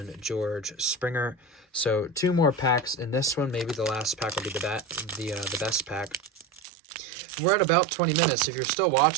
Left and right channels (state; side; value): drops out; left; at 6.7 s